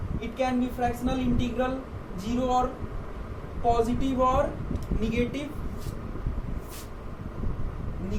It can be fractional, integral, zero और पॉजिटिव और निगेटिव,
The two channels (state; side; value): identical; both; correlation 1.00